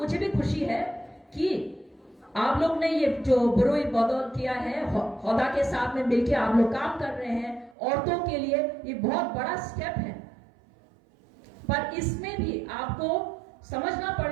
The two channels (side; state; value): left; drops out; at 7.8 s